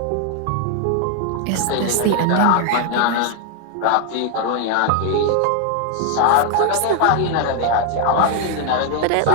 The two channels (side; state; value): both; different; correlation 0.00